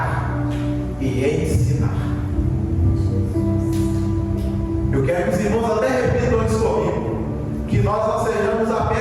e ensinar. Eu quero que os irmãos até repitam isso comigo, que nós não sejamos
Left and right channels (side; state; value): both; identical; correlation 1.00